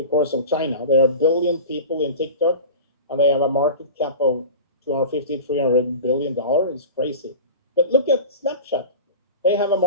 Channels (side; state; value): both; inverted; correlation -0.34